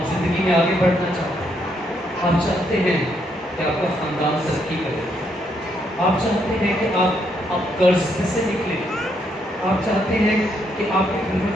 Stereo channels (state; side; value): normal; both; correlation 0.75